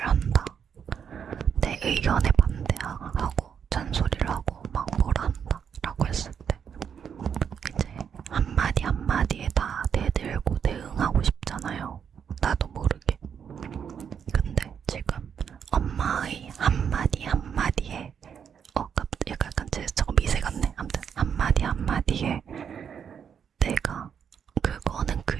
한다. 내 의견에 반대하고 잔소리를 하고 막 뭐라 한다 라고 했을 때 이제 한마디 한마디에 다 대들고 대응하고 싶잖아요. 나도 모르게. 근데 지금 엄마의 한마디 한마디에 약간 제스처가 미세 같네. 아무튼 한마디 한마디에 내가 그거는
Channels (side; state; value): left; quieter; 7.6 dB